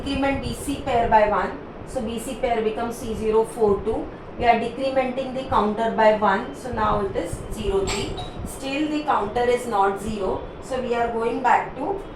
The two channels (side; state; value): both; identical; correlation 1.00